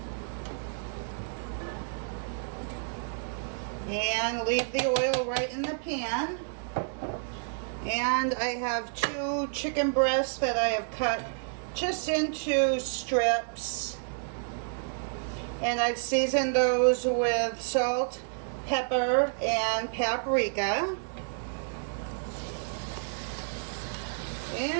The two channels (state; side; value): silent; left; digital silence